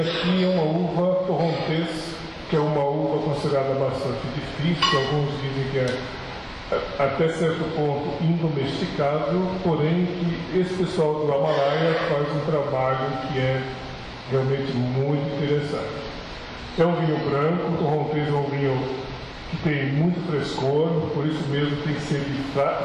é uma uva torrontés, que é uma uva considerada bastante difícil. Alguns dizem que é até certo ponto indomesticável, porém que esse pessoal do Amalaia faz um trabalho que é realmente muito interessante. É um vinho branco, o torrontés é um vinho que tem muito frescor, por isso mesmo tem que ser de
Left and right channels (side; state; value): both; identical; correlation 1.00